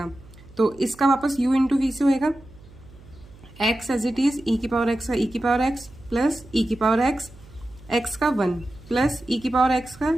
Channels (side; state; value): right; noise; hum, 22 dB below the sound